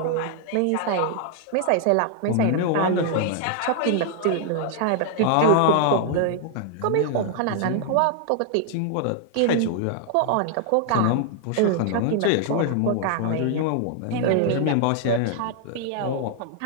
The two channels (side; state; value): both; different; correlation 0.00